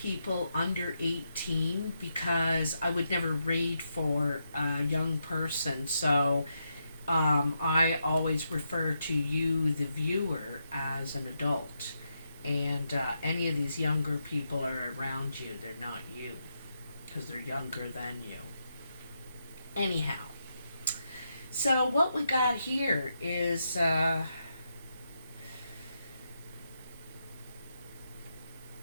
under 18, because I would never read for a young person. So I always refer to you, the viewer, as an adult. And any of these younger people are around you. They're not you, because they're younger than you. Anyhow, so what we got here is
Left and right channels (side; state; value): both; inverted; correlation -0.83